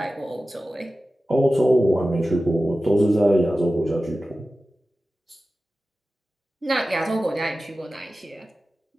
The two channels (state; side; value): normal; both; correlation 0.95